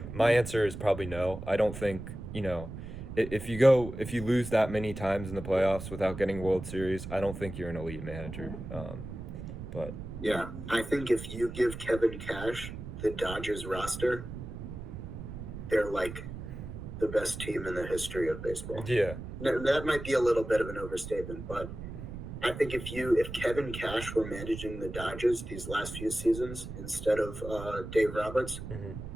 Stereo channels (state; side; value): noise; right; rumble, 9 dB below the sound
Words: my answer is probably no. I don't think, if you lose that many times in the playoffs without getting World Series, I don't think you're an elite manager. But Yeah, I think if you give Kevin Cash the Dodgers roster, they're like the best team in the history of baseball. yeah, That might be a little bit of an overstatement, but I think if Kevin Cash were managing the Dodgers these last few seasons instead of Dave Roberts, hmm,